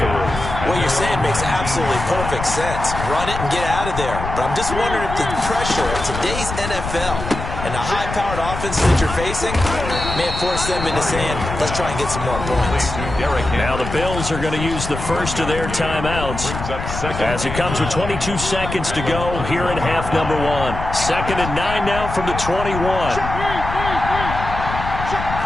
room? What you're saying makes absolutely perfect sense. Run it and get out of there. But I'm just wondering if the pressure of today's NFL and the high-powered offense that you're facing may have forced them into saying, let's try and get some more points. Now the Bills are going to use the first of their timeouts as it comes with 22 seconds to go here in half number 1. 2nd and 9 now from the 21.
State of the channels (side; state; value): left; noise; rumble, 7 dB below the sound